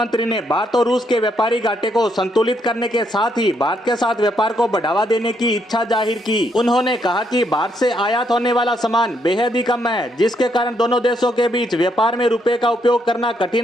ने भारत और रूस के व्यापारी घाटे को संतुलित करने के साथ ही भारत के साथ व्यापार को बढ़ावा देने की इच्छा जाहिर की। उन्होंने कहा कि भारत से आयात होने वाला सामान बेहद ही कम है, जिसके कारण दोनों देशों के बीच व्यापार में रुपए का उपयोग करना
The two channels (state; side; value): normal; both; correlation 0.75